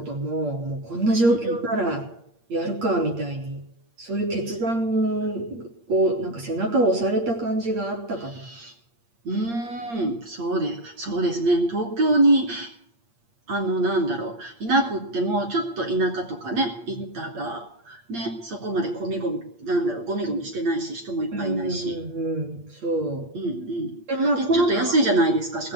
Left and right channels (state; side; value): late; left; 8.6 ms